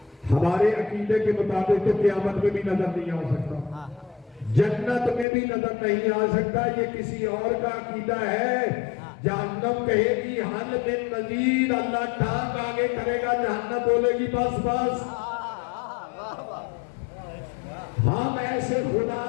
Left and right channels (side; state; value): right; drops out; at 5.2 s